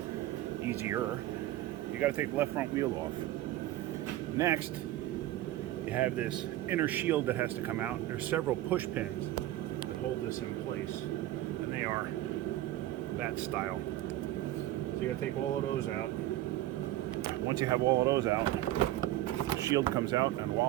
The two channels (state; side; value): quieter; left; 14.8 dB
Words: easier. You got to take the left front wheel off. Next, you have this inner shield that has to come out. There's several push pins that hold this in place, and they are that style. So you got to take all of those out. Once you have all of those out, the shield comes out, and